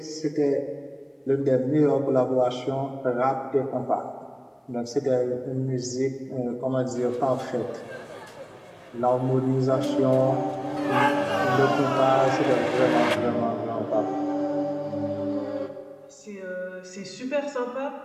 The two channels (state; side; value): identical; both; correlation 1.00